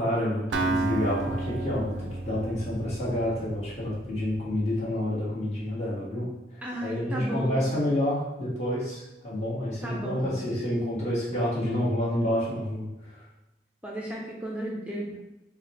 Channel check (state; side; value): normal; both; correlation 0.67